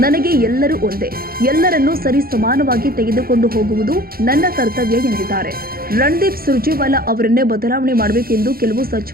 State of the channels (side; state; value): left; late; 0.43 ms